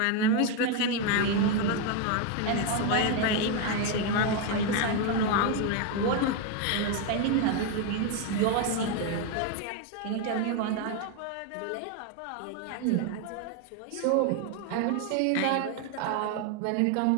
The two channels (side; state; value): both; different; correlation 0.01